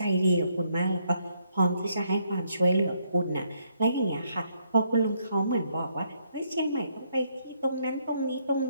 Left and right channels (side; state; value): both; inverted; correlation -0.74